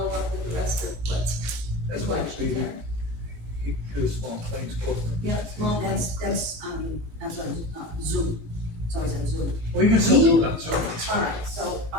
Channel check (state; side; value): late; left; 18 ms